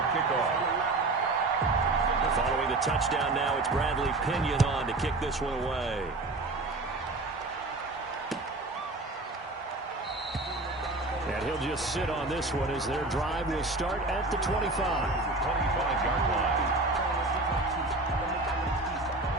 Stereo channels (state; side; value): quieter; left; 3.0 dB